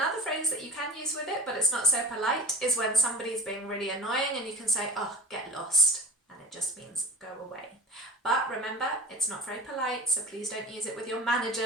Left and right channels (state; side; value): normal; both; correlation 0.35